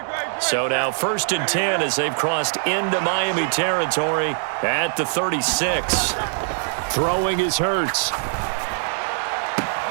So now 1st and 10 as they've crossed into Miami territory at the 36. Throwing is Hurts.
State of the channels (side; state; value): left; silent; digital silence